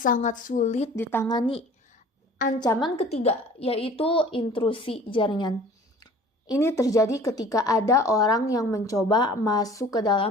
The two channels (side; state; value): both; normal; correlation 0.47